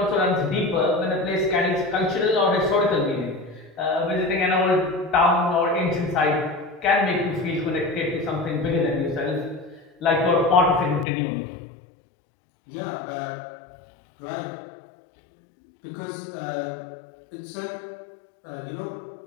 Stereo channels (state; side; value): drops out; right; at 11.1 s